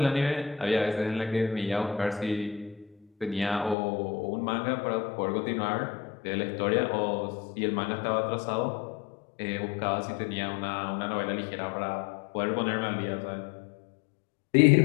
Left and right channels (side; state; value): right; drops out; at 3.8 s